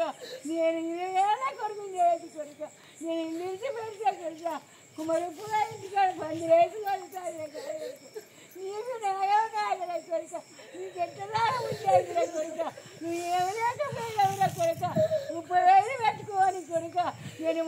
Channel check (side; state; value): both; identical; correlation 1.00